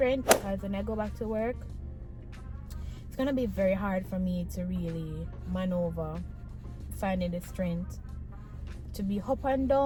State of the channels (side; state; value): both; identical; correlation 1.00